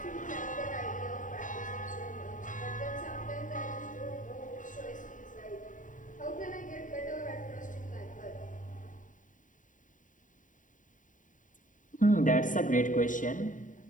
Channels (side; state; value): right; late; 0.38 ms